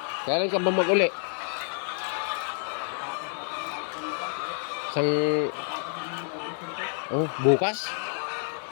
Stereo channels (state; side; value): silent; right; 59 dB below the other